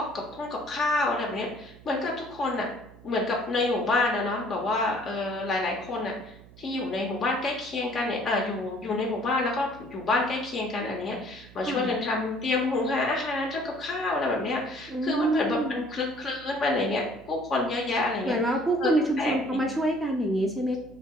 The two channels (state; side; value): noise; right; hum, 21 dB below the sound